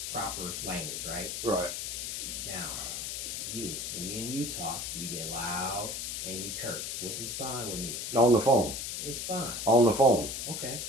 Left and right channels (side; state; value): left; noise; hiss, 4 dB below the sound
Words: proper language, right? Right. Now, when me and you talk, you get loud and you curse, which is fine with me. On the phone. It's fine. On the phone. Okay,